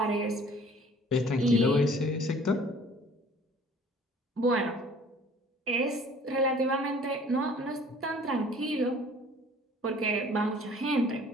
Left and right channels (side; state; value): both; normal; correlation 0.52